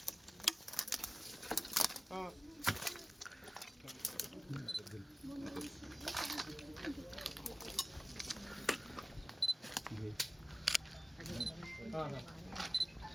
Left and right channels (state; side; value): normal; both; correlation 0.97